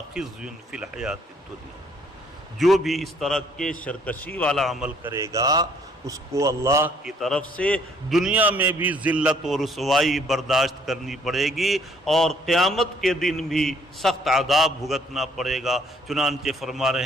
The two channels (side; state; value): both; normal; correlation 0.64